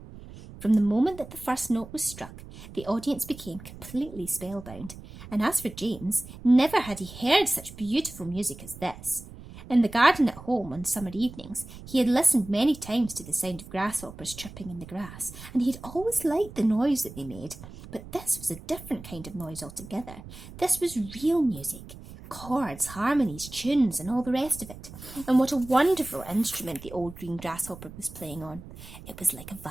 From the moment that the first note was struck, the audience became completely spellbound, and as for James, never had he heard such beautiful music as this. In the garden at home on summer evenings, he had listened many times to the sound of grasshoppers chirping in the grass, and he had always liked the noise that they made. But this was a different kind of noise altogether. This was real music. Chords, harmonies, tunes, and all the rest of it. And what a wonderful instrument the old green grasshopper was playing on. It was like a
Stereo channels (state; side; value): noise; right; rumble, 15 dB below the sound